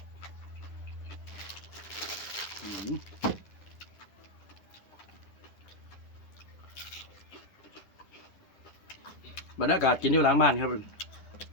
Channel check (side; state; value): right; late; 10 ms